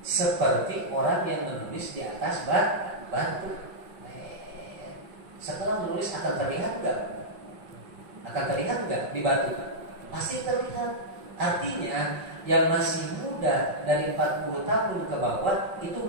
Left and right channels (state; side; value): late; left; 5.5 ms